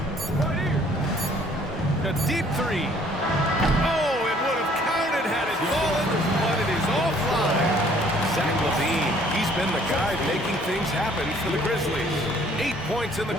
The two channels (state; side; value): normal; both; correlation 0.59